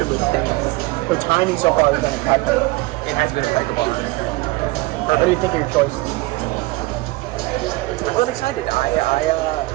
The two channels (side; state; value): left; quieter; 21.4 dB